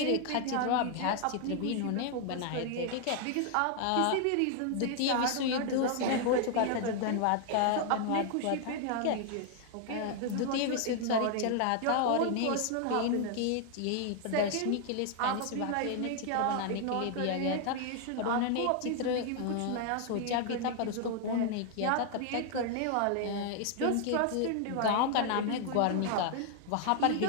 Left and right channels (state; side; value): different; both; correlation 0.00